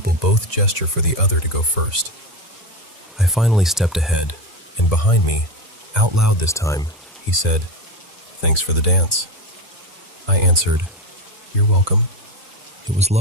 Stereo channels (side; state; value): both; normal; correlation 0.18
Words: both gesture for the other to go first. I finally stepped ahead, and behind me, out loud this time, he said, "Thanks for the dance." I answered, "You're welcome." It was